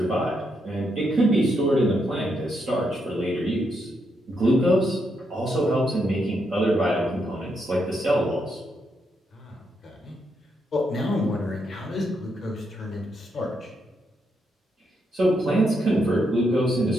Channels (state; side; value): normal; both; correlation 0.79